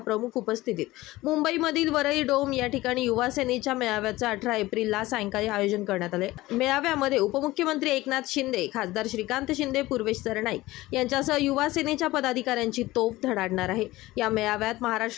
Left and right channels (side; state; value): right; quieter; 18.3 dB